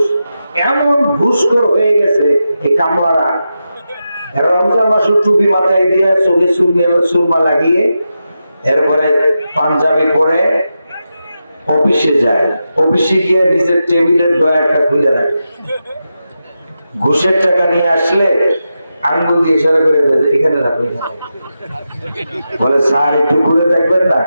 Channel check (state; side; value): inverted; both; correlation -0.89